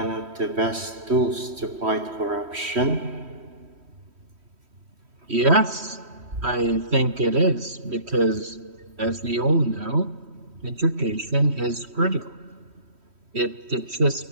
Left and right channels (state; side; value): late; left; 3.1 ms